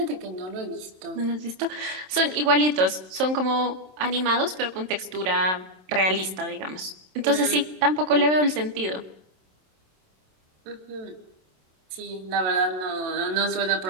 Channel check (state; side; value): late; left; 27 ms